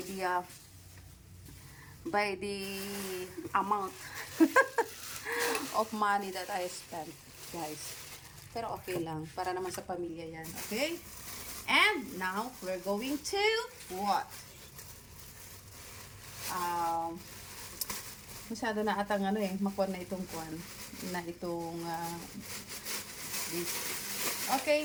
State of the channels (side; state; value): both; identical; correlation 1.00